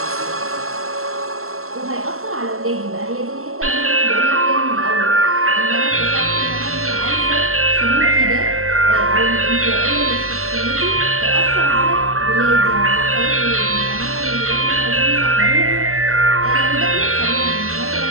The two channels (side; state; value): left; late; 0.63 ms